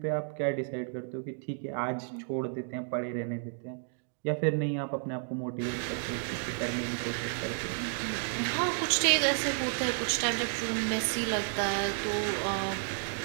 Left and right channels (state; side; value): silent; left; 57 dB below the other